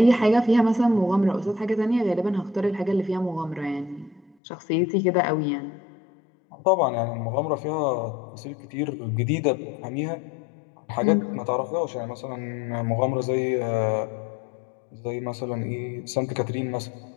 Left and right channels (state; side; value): drops out; right; at 4.4 s